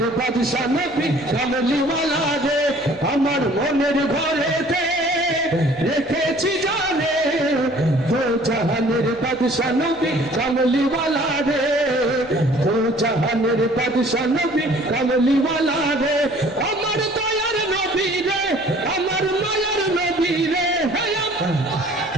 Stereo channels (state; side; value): noise; left; hum, 25 dB below the sound